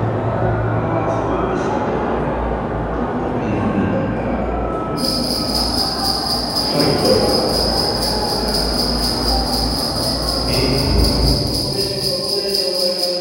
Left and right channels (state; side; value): identical; both; correlation 1.00